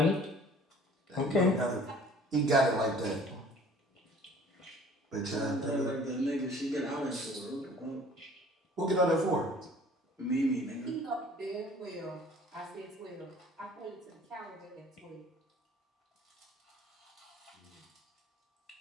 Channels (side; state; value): both; normal; correlation 0.51